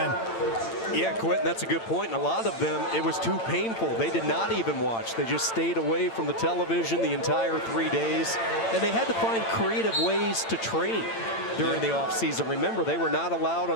Yeah, Quentin, that's a good point. And a lot of them, it was too painful. They did not even watch. They just stayed away from the television the entire 3 days. And they had to find creative ways to train during the off season. Remember, they were not allowed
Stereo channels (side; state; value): right; late; 8.8 ms